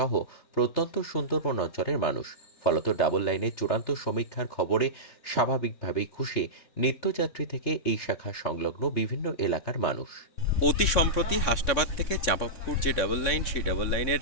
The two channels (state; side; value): late; right; 3.6 ms